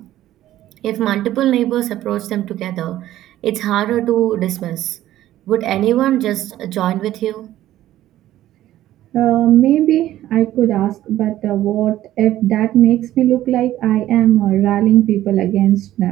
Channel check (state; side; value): quieter; left; 13.7 dB